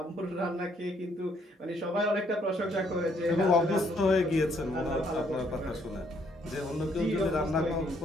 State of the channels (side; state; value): both; normal; correlation 0.68